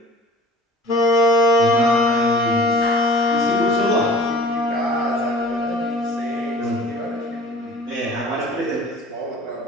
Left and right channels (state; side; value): normal; both; correlation 0.44